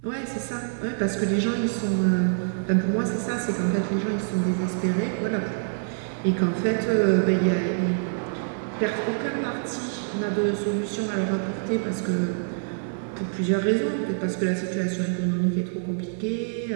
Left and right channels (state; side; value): silent; left; 57 dB below the other